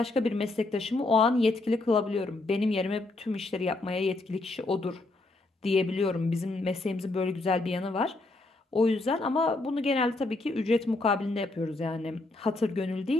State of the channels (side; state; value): right; quieter; 3.0 dB